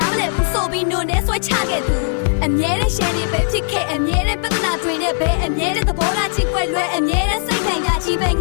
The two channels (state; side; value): silent; right; 67 dB below the other